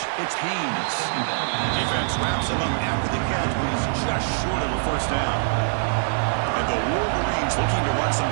it's Haynes. Defense wraps him up after the catch, but he's just short of a first down. And the Wolverines looking to run some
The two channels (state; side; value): silent; left; digital silence